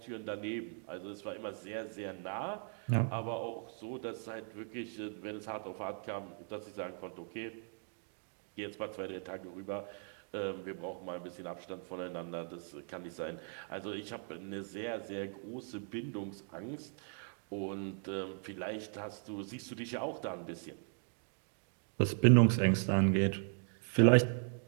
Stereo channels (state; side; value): silent; left; 52 dB below the other